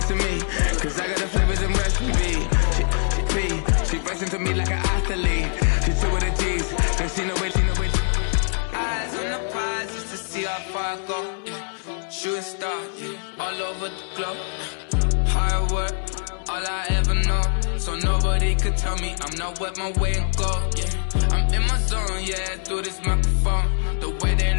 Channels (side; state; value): right; silent; 63 dB below the other